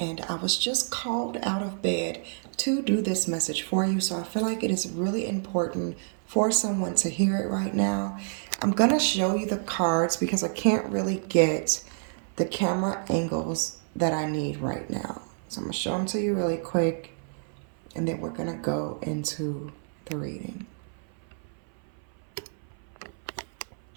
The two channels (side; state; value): left; silent; 59 dB below the other